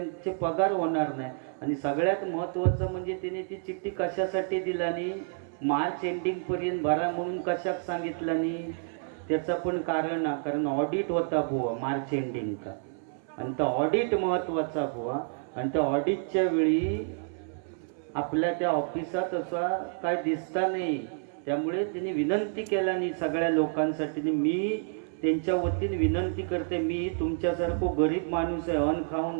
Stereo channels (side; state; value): left; silent; 58 dB below the other